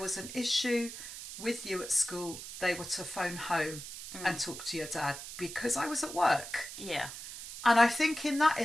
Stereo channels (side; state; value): right; noise; hiss, 10 dB below the sound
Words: was an issue with you at school, they were to phone home and talk to your dad, because I was at work. Yeah. And I think in that